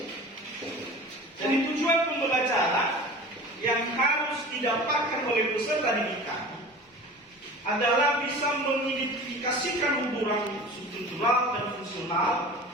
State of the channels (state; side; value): normal; both; correlation 0.38